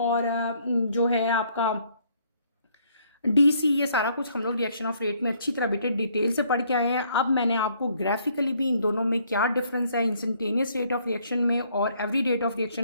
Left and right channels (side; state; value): both; inverted; correlation -0.66